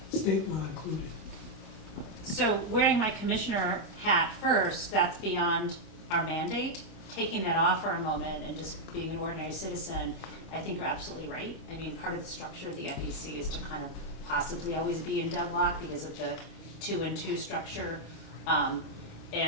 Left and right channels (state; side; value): late; right; 26 ms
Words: state law included? So wearing my commissioner hat first, that's beyond our mandate. Taking that off for a moment and just being an ordinary citizen, I think you're absolutely right. I mean, part of the structure of the FEC is to kind of possibly always be in deadlock because of the 2 and 2 structure.